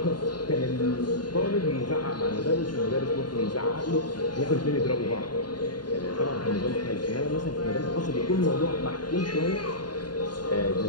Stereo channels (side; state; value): right; late; 0.70 ms